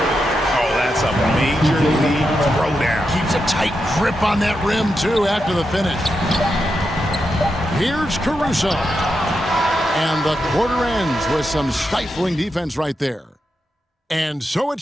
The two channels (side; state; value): both; normal; correlation 0.86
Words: Oh, that's a major league throwdown. Keeps a tight grip on that rim, too, after the finish. Here's Caruso. And the quarter ends with some stifling defense right there. And so